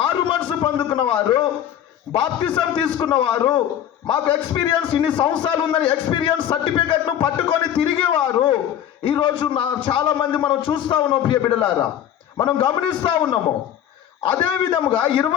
మనసు పొందుకున్న వారు, బాప్తిజం తీసుకున్నవారు, మాకు ఎక్స్పీరియన్స్ ఇన్ని సంవత్సరాలు ఉందని ఎక్స్పీరియన్స్ సర్టిఫికెట్ను పట్టుకొని తిరిగేవారు ఈరోజు చాలామంది మనం చూస్తూ ఉన్నాం ప్రియ బిడ్డలారా, మనం గమనిస్తూ ఉన్నాము. అదే విధముగా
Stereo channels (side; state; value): right; quieter; 10.4 dB